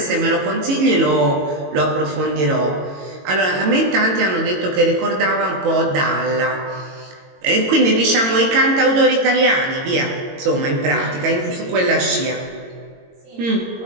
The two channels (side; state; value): left; late; 22 ms